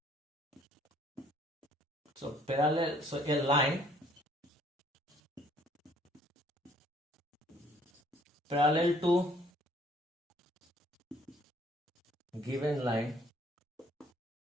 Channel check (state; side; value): normal; both; correlation 0.60